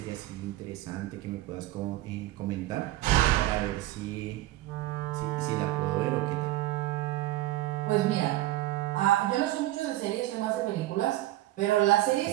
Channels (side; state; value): left; quieter; 16.1 dB